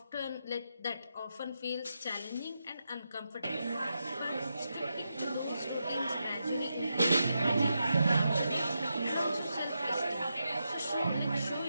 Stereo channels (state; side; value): inverted; both; correlation -0.86